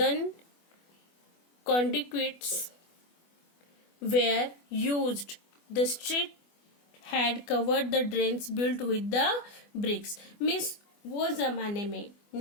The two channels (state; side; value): late; right; 24 ms